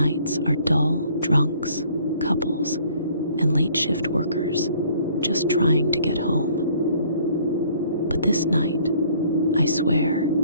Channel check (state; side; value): inverted; both; correlation -0.58